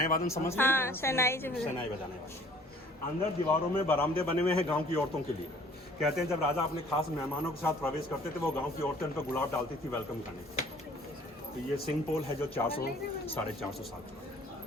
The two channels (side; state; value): both; normal; correlation 0.54